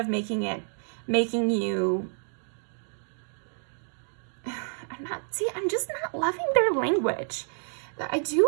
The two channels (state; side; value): silent; left; 59 dB below the other